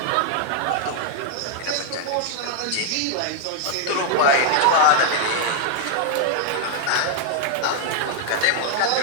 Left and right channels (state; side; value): different; both; correlation -0.01